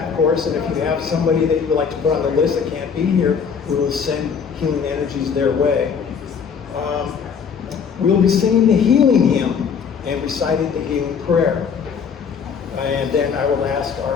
of course, and if you have somebody that you would like to put on the list that can't be here, we will send healing energies their way. We'll be singing the healing hymn and reciting the healing prayer. And then I will ask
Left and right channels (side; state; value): right; quieter; 6.5 dB